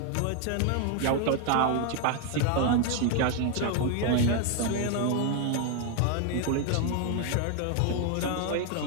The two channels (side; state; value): both; different; correlation 0.01